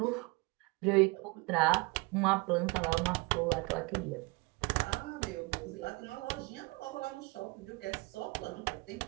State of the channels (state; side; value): quieter; left; 26.0 dB